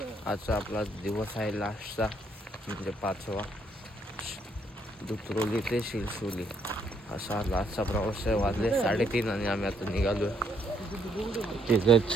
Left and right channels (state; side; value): normal; both; correlation 0.71